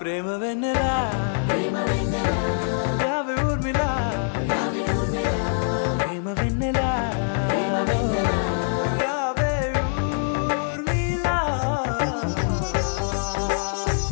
ప్రేమ వెన్నెలా రావే ఊర్మిళా ప్రేమ వెన్నెలా రావే ఊర్మిళా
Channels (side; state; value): right; silent; 56 dB below the other